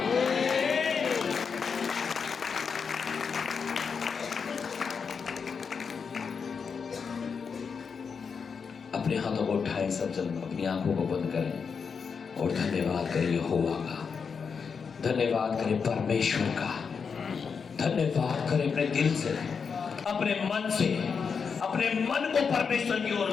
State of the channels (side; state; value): right; quieter; 5.9 dB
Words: अपने हाथों को उठाएं सब जन, अपनी आंखों को बंद करें और धन्यवाद करें यहोवा का, धन्यवाद करें परमेश्वर का, धन्यवाद करें अपने दिल से, अपने मन से। अपने मन को परमेश्वर की ओर